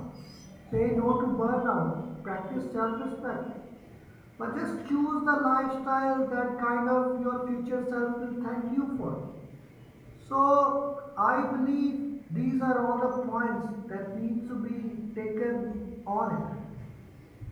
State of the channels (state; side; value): identical; both; correlation 1.00